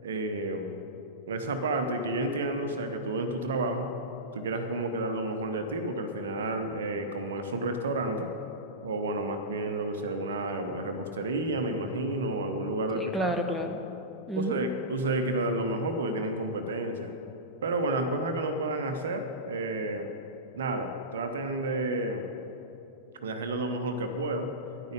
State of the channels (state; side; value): normal; both; correlation -0.18